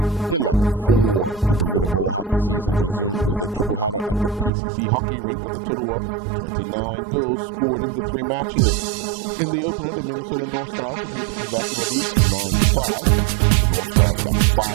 11-4. The Bermuda Bowl hockey season resumed with a triple header at the PCC hockey rink with a total of 29 goals scored in the 3 matches. In the opener, the Minnesota North Stars defeated the Quebec Nordiques 9-5. The North Stars got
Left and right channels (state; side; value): drops out; left; at 4.5 s